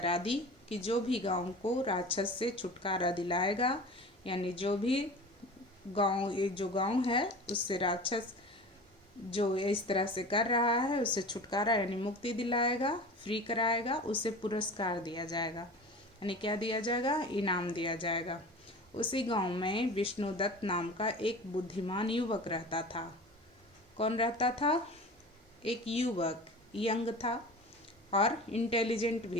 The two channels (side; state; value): both; normal; correlation 0.36